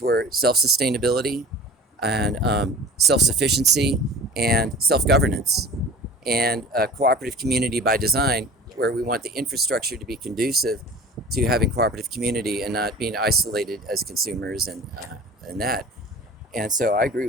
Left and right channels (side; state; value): both; normal; correlation 0.41